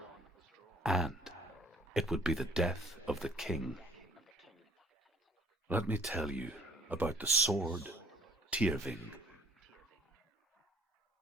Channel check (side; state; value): both; normal; correlation 0.56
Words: and it would be the death of the king. Let me tell you about the sword Tyrving.